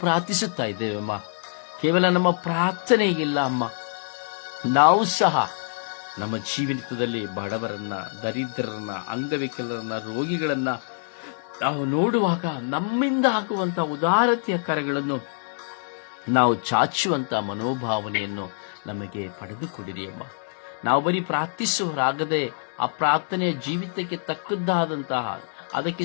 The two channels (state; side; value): silent; right; digital silence